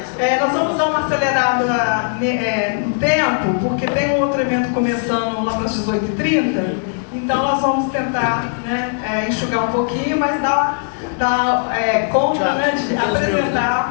nós vamos dar uma acelerada no tempo, porque tem um outro evento começando lá para as 18h30, então nós vamos tentar enxugar um pouquinho, mas dar conta de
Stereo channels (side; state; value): right; silent; digital silence